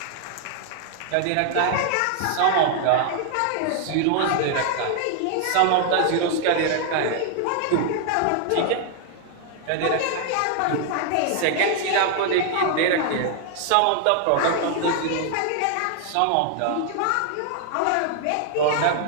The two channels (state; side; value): different; both; correlation 0.00